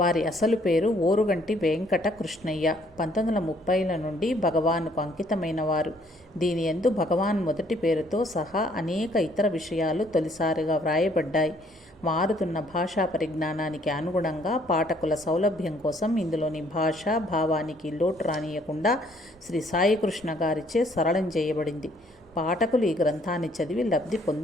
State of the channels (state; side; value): normal; both; correlation 0.64